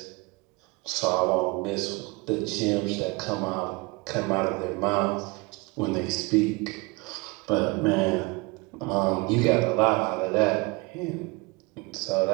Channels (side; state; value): left; quieter; 25.6 dB